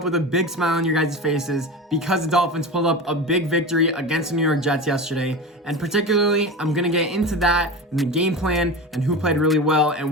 with a big smile on your guys' faces because the Dolphins pulled up a big victory against the New York Jets yesterday. And particularly, I'm going to get into that and the game plan and who played really well and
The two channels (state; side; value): normal; both; correlation 0.27